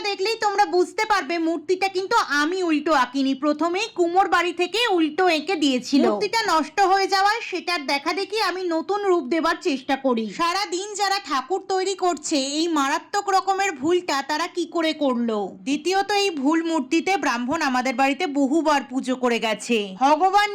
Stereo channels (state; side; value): identical; both; correlation 1.00